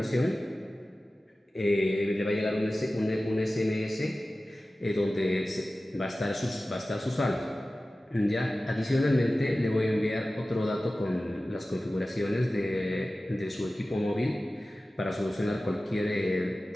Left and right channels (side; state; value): both; normal; correlation 0.96